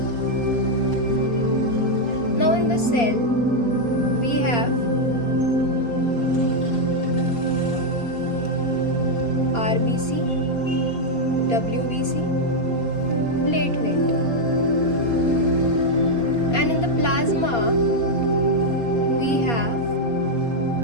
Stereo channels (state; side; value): late; right; 4.3 ms